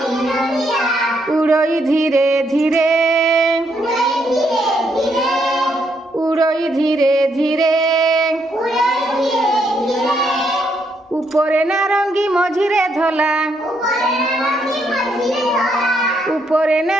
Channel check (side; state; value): both; normal; correlation 0.75